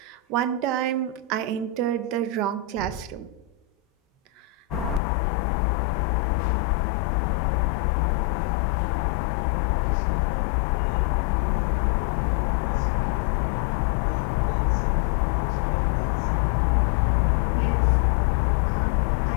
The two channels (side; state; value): right; drops out; at 5.0 s